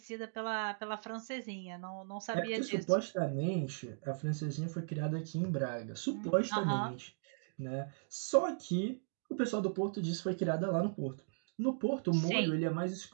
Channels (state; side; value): silent; left; digital silence